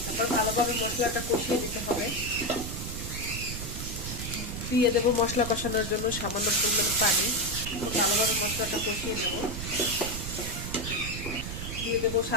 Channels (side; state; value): right; noise; rumble, 6 dB below the sound